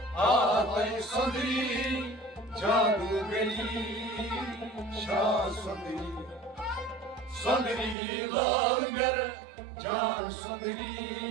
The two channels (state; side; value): drops out; left; at 8.0 s